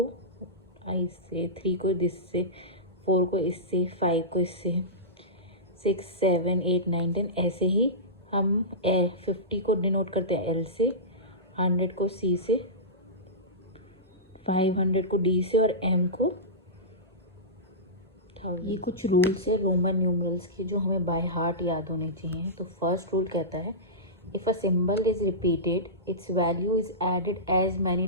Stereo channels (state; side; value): normal; both; correlation -0.17